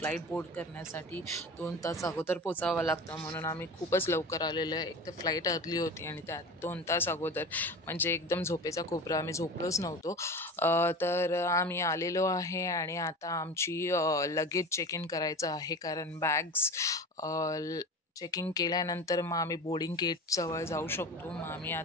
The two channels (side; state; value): both; normal; correlation 0.32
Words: बोर्ड करण्यासाठी 2 तास अगोदर पोचावं लागतं, म्हणून आम्ही खूपच लवकर आलेलो आहे. एक तर फ्लाईट अर्ली होती आणि त्यात 2 तास अगोदर म्हणजे एकदम झोपेचा कोपरा, आम्ही झोपलोच नव्हतो. तर आम्ही आलेलो आहे आणि आता आमची लगेज चेक इन करायचं आहे, कारण बॅग्स चेकिंग केल्यानंतर मग आम्ही बोर्डिंग गेटजवळ जाऊ शकतो. मग आम्ही